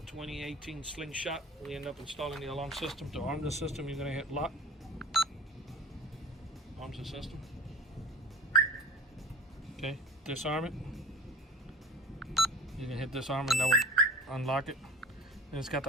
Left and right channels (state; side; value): normal; both; correlation 0.38